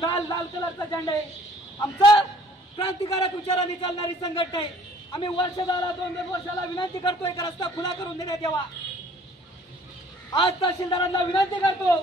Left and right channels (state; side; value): normal; both; correlation 0.56